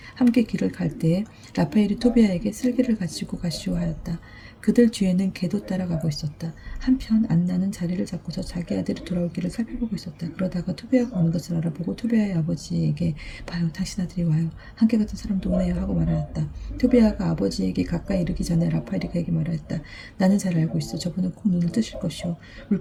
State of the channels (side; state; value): both; identical; correlation 1.00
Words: 함께 길을 갈 때에 라파엘이 토비아에게 쓸개를 가지고 가시오 하였다. 그들 뒤에는 개도 따라가고 있었다. 한편 안나는 자리를 잡고서 자기 아들이 돌아오기를 살펴보고 있었다. 그러다가 토비아가 오는 것을 알아보고 토비아의 아버지에게 봐요, 당신 아들이 와요. 함께 갔던 사람도 오네요 하고 말하였다. 토비아가 아버지에게 가까이 이르기 전에 라파엘이 그에게 말하였다. 나는 잘 알고 있어. 저분은 꼭 눈을 뜨실 것이오.